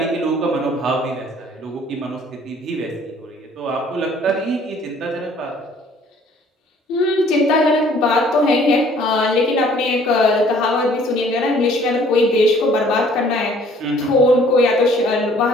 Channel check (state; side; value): normal; both; correlation 0.57